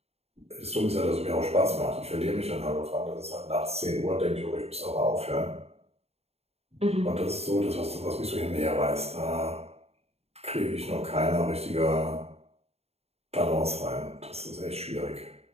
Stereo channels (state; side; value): late; left; 0.30 ms